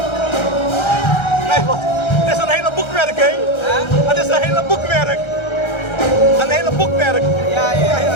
Kijk wat, het is een hele boekwerk, hè? boekmerk. Ja.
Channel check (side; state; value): right; late; 1.3 ms